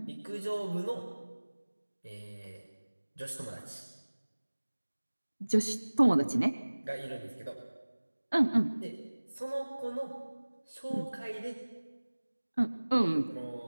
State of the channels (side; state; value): both; inverted; correlation -1.00